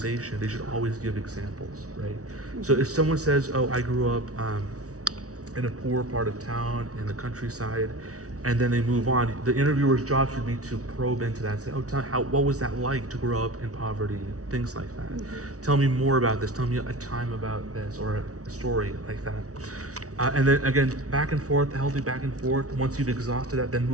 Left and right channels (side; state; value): left; late; 0.66 ms